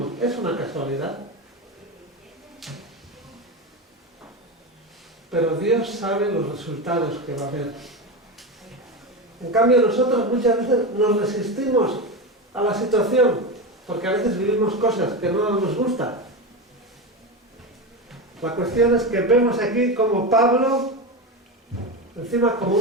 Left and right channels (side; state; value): both; normal; correlation 0.18